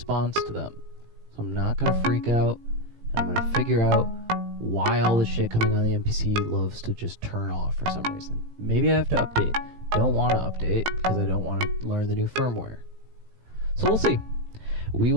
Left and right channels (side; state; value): left; late; 18 ms